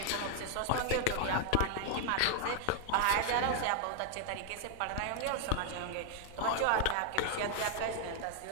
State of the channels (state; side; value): different; both; correlation 0.00